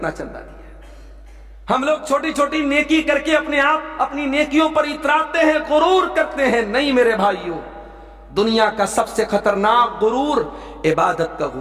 چندہ دیا۔ ہم لوگ چھوٹی چھوٹی نیکی کر کے اپنی نیکیوں پر اتراتے ہیں، غرور کرتے ہیں۔ نہیں میرے بھائیوں، دنیا کا سب سے خطرناک غرور عبادت کا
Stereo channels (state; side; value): identical; both; correlation 1.00